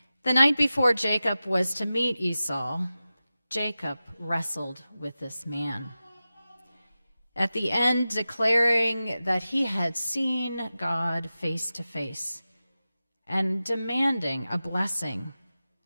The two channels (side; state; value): both; inverted; correlation -0.94